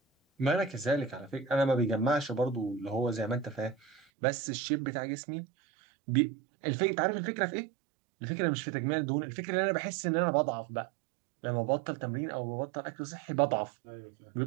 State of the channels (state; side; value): drops out; left; at 4.0 s